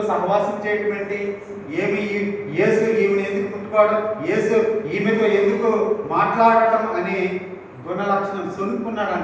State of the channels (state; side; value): identical; both; correlation 1.00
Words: సహవాసం చేయటం ఏంటి? యేసు ఈమెను ఎందుకు ముట్టుకోవడం, యేసు ఈమెతో ఎందుకు మాట్లాడటం అని గుణ లక్షణం సొనుక్కున్నాడు.